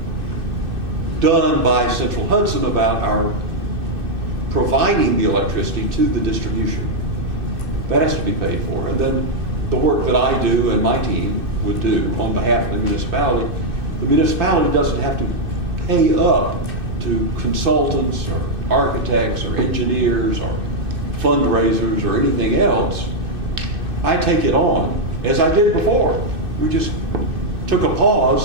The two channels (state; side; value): late; left; 2.6 ms